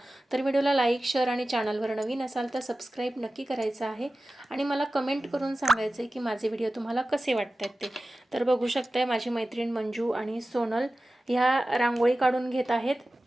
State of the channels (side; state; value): both; normal; correlation 0.95